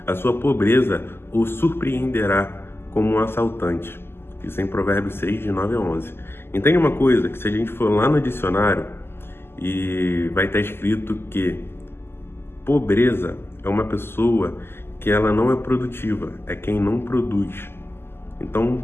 a sua pobreza o surpreenderá como um assaltante. Isso é em Provérbios 6, de 9 a 11. Entende uma coisa, que se a gente for lá no dicionário, e vai estar escrito que pobreza é uma pessoa que ela não é produtiva, é quem não produz. Então,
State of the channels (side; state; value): right; late; 0.12 ms